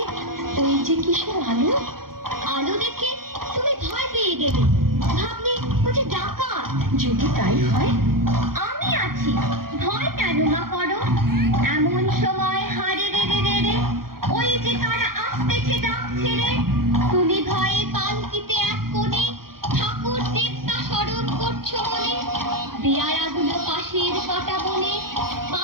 ওই যে কিসের আলো। আলো দেখে তুমি ভয় পেয়ে গেলে, ভাবলে ও যে ডাকাত। যদি তাই হয়, আমি আছি, ভয় কেন না করো। এমন সময় হারে রে রে রে রে, ওই যে তারা আসতেছে ডাক ছেড়ে। তুমি ভয়ে পালকিতে এক কোণে, ঠাকুর দেবতা স্মরণ করছো মনে। পেয়ারাগুলো পাশের কাটা বনে,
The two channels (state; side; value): late; left; 0.93 ms